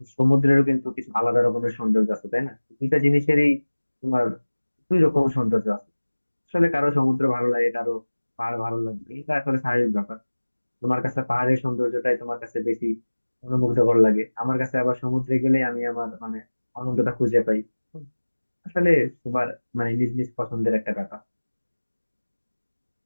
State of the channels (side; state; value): both; inverted; correlation -1.00